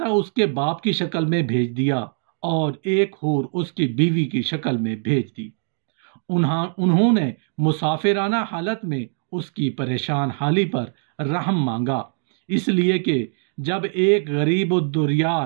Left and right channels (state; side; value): silent; left; digital silence